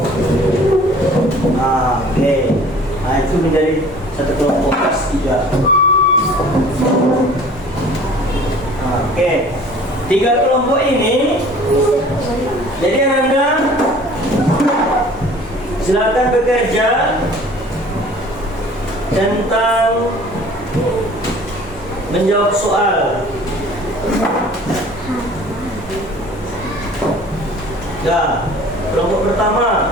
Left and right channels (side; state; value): both; normal; correlation 0.48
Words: Oke. Itu menjadi satu kelompok kelas 3. Oke. 3 kelompok ini, jadi Anda silakan bekerja tentang menjawab soal. Ya, kelompok